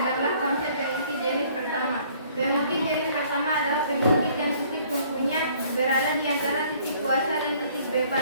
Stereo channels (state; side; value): inverted; both; correlation -0.59